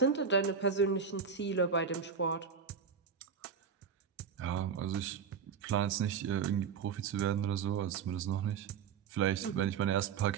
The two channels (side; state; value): left; quieter; 6.5 dB